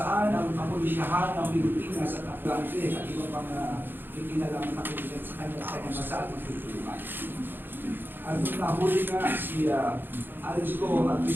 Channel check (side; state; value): left; late; 0.097 ms